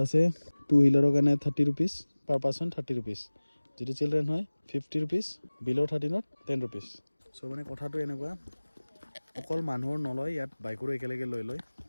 আছে 2 হুইলাৰৰ কাৰণে 30 rupees পাৰ পাৰ্চন 30 rupees যদি চিলড্ৰেন হয় 50 rupees বিল' 13ত 10 rupees চ' মানে কথাটো এনেকুৱা অকল মানুহৰ নলয় ইয়াত বাইকৰো একেলগে লৈ লয়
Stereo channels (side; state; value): both; inverted; correlation -1.00